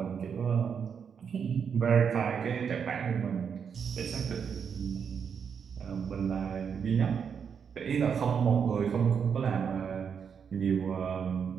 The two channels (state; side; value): quieter; left; 6.9 dB